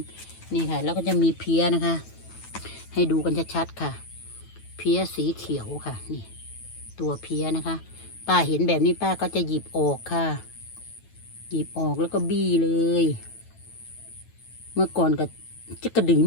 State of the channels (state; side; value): late; right; 9.2 ms